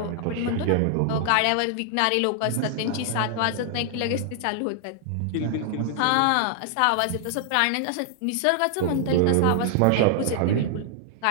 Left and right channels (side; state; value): both; different; correlation -0.01